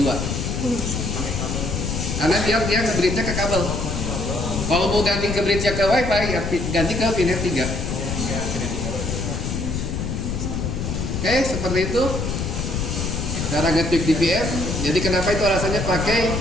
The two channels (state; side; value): noise; left; rumble, 2 dB below the sound